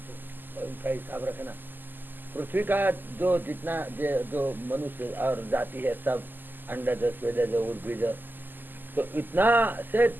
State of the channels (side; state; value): left; late; 0.089 ms